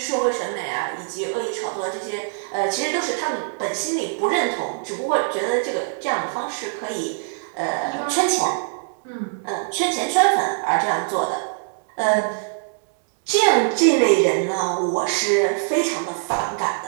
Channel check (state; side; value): silent; left; digital silence